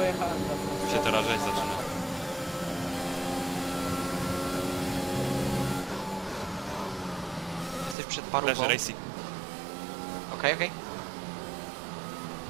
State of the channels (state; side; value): drops out; left; at 8.0 s